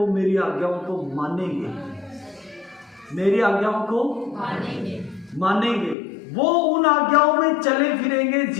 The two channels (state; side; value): drops out; right; at 6.0 s